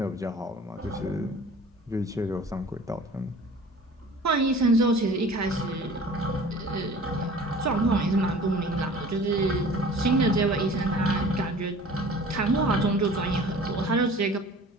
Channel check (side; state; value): both; normal; correlation 0.45